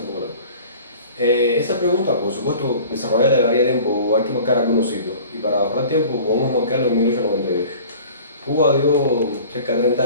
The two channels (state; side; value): inverted; both; correlation -0.44